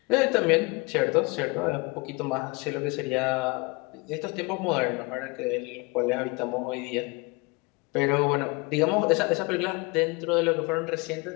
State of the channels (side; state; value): right; quieter; 27.4 dB